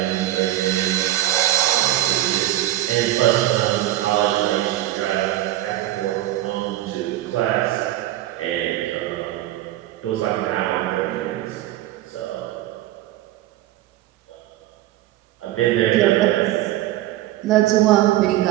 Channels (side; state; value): left; quieter; 14.8 dB